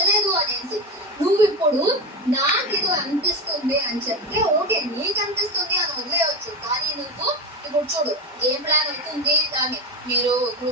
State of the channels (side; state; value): both; normal; correlation 0.20